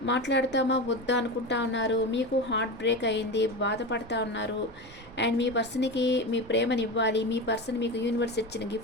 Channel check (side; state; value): right; noise; rumble, 24 dB below the sound